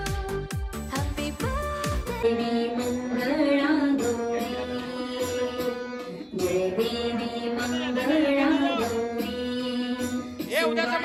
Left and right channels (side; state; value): both; identical; correlation 1.00